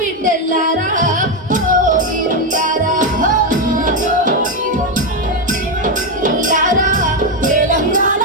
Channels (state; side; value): normal; both; correlation 0.07